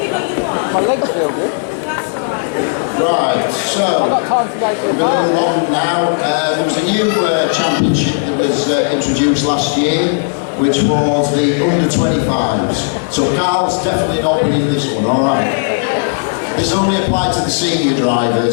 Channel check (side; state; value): right; silent; 68 dB below the other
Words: My legs feel good. Right, so I've got time to go to the we're bar. going along now. There was a new championship that was introduced last year, which was the under-25s. So Carl's definitely not winning this one, alright? This only applied to the senior